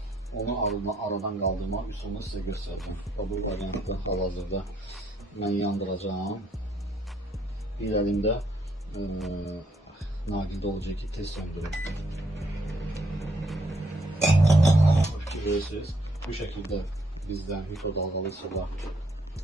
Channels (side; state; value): both; normal; correlation 0.71